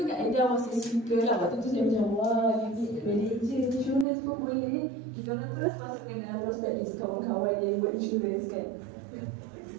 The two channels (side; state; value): left; drops out; at 4.0 s